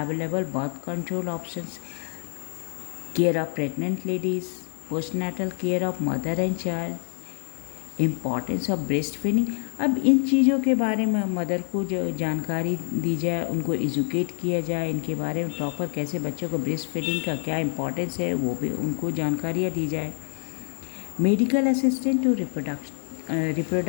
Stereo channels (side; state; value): right; silent; digital silence